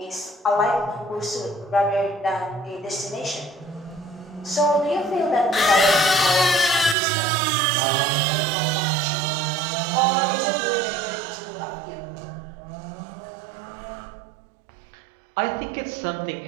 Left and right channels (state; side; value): drops out; left; at 7.0 s